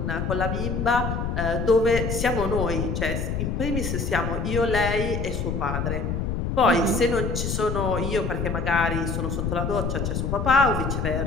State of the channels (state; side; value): noise; left; rumble, 1 dB below the sound